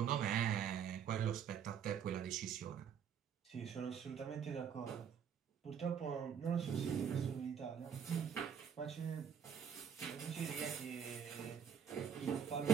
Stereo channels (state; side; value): quieter; left; 7.9 dB